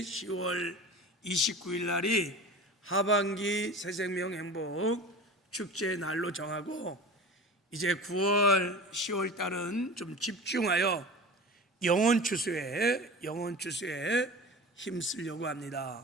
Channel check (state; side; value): normal; both; correlation 0.35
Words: 10월 29일 날이 하반기 새생명 행복축제 날로 정하고, 이제 9월 10월 달은 좀 집중하여 영혼 추수에 힘쓰려고 합니다.